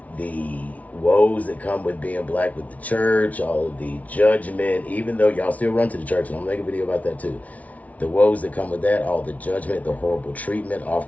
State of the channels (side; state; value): right; late; 0.070 ms